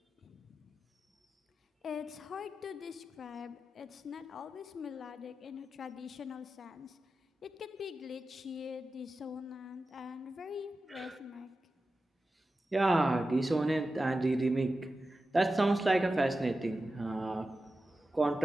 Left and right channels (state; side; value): normal; both; correlation 0.93